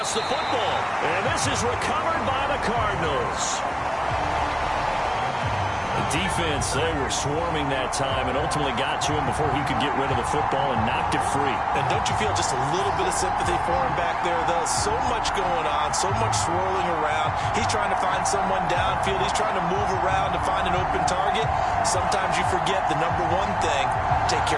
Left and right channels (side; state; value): both; identical; correlation 1.00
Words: the football. And this is recovered by the Cardinals. The defense, they were swarming that time and ultimately got to him before he could get rid of the football and knocked it free. And don't you feel just a little bit of sympathy for him back there, though? So much going on, so much swirling around. He's trying to find someone downfield. He's trying to move around to find an open target. Sometimes you forget the number one thing, take